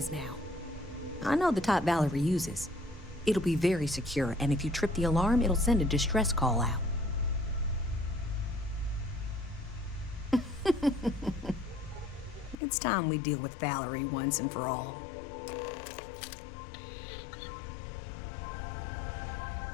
now. I know the type Valerie uses. It'll be very secure, and if you trip the alarm, it'll send a distress call out. It's time we deal with Valerie once and for all.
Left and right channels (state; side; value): drops out; right; at 12.6 s